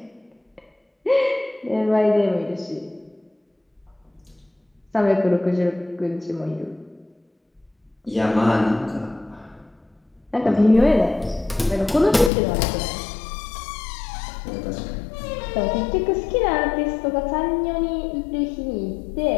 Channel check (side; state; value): right; drops out; at 12.3 s